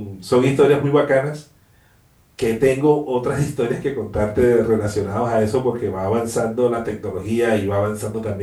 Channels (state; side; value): identical; both; correlation 1.00